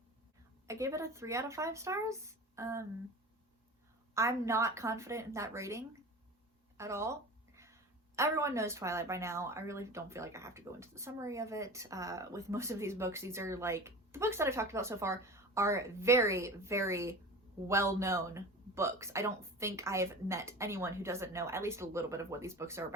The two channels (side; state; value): both; normal; correlation 0.35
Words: I gave it a 3 out of 5 stars. I'm not confident in that rating at all. Everyone knows Twilight by now. I really don't feel like I have to go into the summary of it. With most of these books, these are like, the books that I've talked about so far are very, very well-known books. I don't think I've met anyone who doesn't know at least a little bit of what these books are